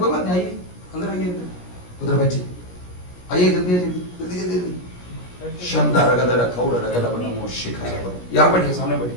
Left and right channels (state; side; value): late; right; 17 ms